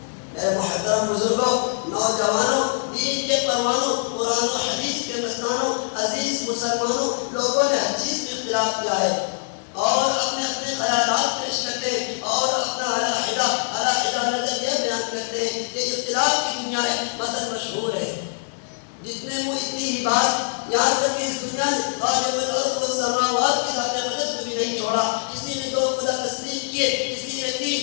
میرے محترم بزرگوں، نوجوانوں، دین کے پروانوں، قرآن و حدیث کے مستانوں، عزیز مسلمانوں، لوگوں نے ہر چیز میں اختلاف کیا ہے اور اپنے اپنے خیالات پیش کرتے ہیں اور اپنا علیحدہ نظریہ بیان کرتے ہیں کہ اختلاف کی دنیا ہے، مثل مشہور ہے، جتنے منہ اتنی ہی بات، یہاں تک کہ اس دنیا نے خالق الارض والسماوات کی ذات اقدس کو بھی نہیں چھوڑا۔ کسی نے دو خدا تسلیم کیے، کسی نے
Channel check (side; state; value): right; silent; 63 dB below the other